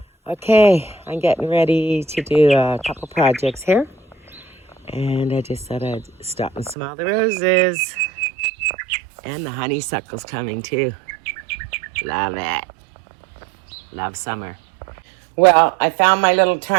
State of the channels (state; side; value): drops out; left; at 6.8 s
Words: Okay, I'm getting ready to do a couple projects here. And I just thought I'd stop and smell the roses. And the honeysuckle's coming too. Love it. Love summer. Well, I found my little